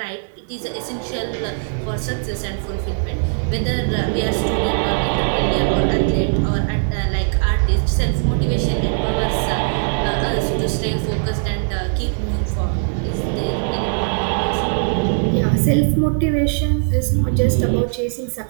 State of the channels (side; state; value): left; silent; 61 dB below the other